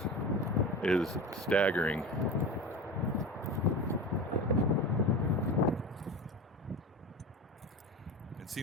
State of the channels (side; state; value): both; normal; correlation 0.28